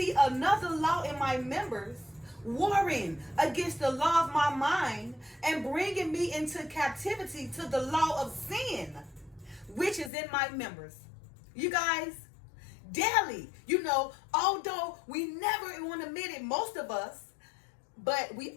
another law in my members, warring against the law of my mind and bringing me into captivity to the law of sin, which is in my members." You guys, daily, although we never want to admit it, most of us, but we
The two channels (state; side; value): drops out; right; at 10.1 s